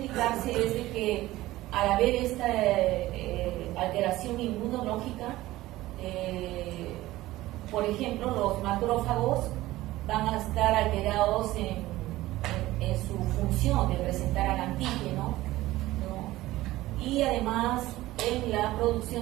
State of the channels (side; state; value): left; quieter; 16.9 dB